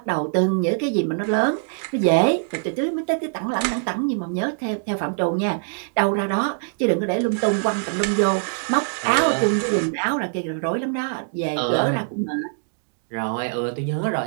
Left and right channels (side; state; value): left; silent; digital silence